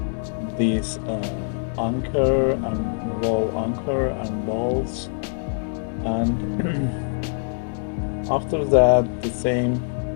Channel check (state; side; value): silent; right; digital silence